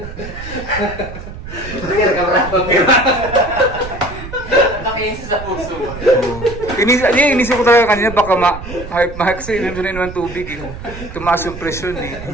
Nakiisa sa puso mo. Inisip ko talaga kanina baka kasi inunin ng tubig eh. Tumaas yung presyon eh.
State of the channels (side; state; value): right; noise; rumble, 12 dB below the sound